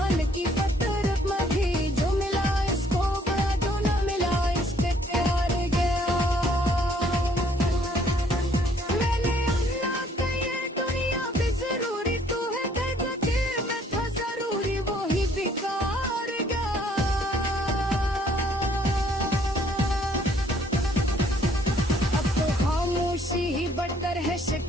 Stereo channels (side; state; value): both; normal; correlation 0.63